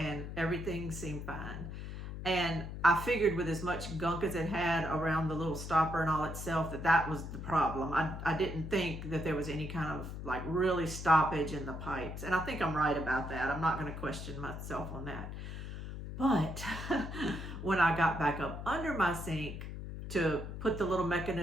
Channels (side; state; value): left; noise; hum, 8 dB below the sound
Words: everything seemed fine. And I figured with as much gunk as it had around the little stopper and all itself, that was the problem. I didn't think that there was any kind of like really stoppage in the pipes. And I think I'm right about that. I'm not going to question myself on that. But when I got back up under my sink to put the little